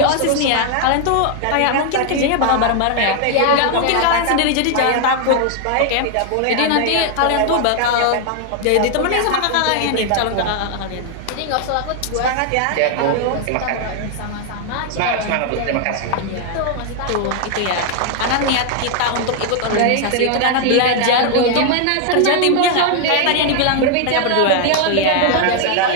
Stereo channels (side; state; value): both; different; correlation 0.00